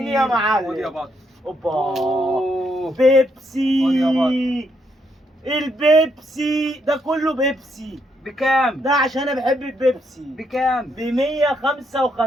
يا خد يا معلم. بطل. اوبا أوه. خد بيبسي. يا البيبسي ده كله بيبسي. بكام؟ ده عشان انا بحب البيبسي. بكام؟ ب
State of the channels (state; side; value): normal; both; correlation 0.76